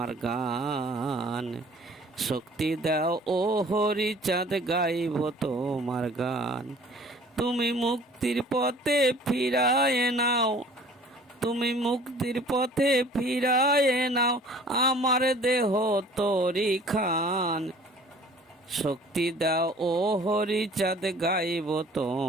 গান। শক্তি দাও ও হরিচাঁদ, গাইব তোমার গান। তুমি মুক্তির পথে ফিরায় নাও, তুমি মুক্তির পথে ফিরায় নাও আমার দেহ তরি খান। শক্তি দাও ও হরিচাঁদ, গাইব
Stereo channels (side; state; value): both; normal; correlation 0.50